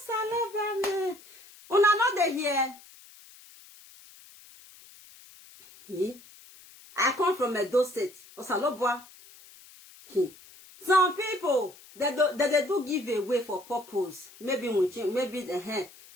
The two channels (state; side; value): noise; left; hiss, 22 dB below the sound